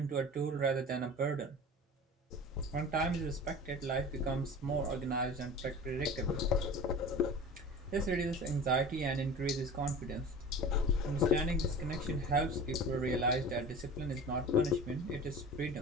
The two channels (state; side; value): normal; both; correlation 0.37